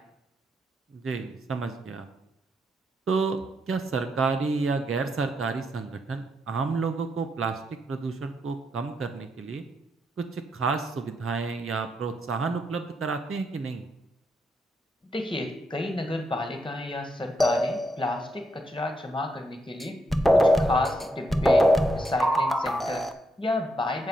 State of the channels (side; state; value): both; normal; correlation 0.79